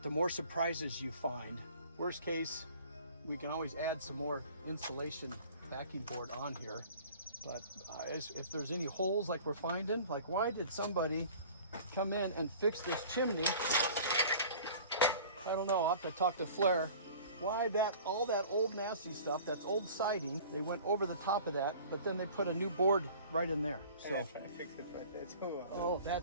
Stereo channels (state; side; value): inverted; both; correlation -0.46